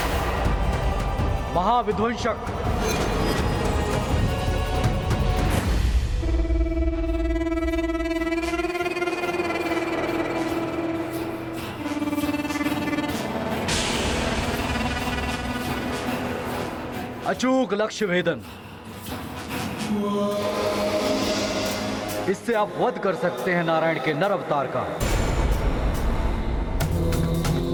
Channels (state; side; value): identical; both; correlation 1.00